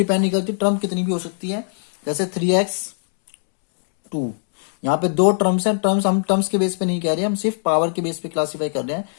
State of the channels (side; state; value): right; silent; digital silence